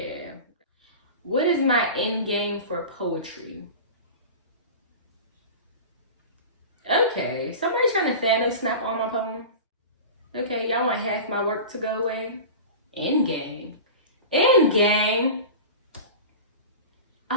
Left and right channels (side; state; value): both; inverted; correlation -0.32